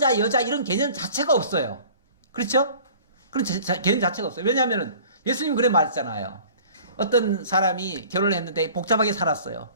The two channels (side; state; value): both; inverted; correlation -0.47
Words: 여자 이런 개념 자체가 없어요. 그렇죠? 그런 개념 자체가 없어요. 왜냐하면 예수님 그래 말했잖아요. 어떤 사람이 결혼을 했는데 복잡하게 살았어요.